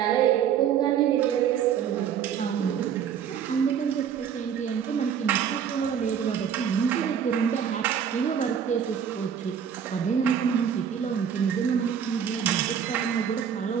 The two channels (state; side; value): quieter; left; 8.2 dB